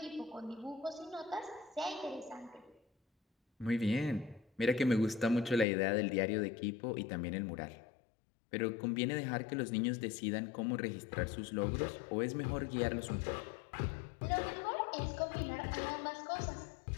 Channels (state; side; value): drops out; right; at 5.7 s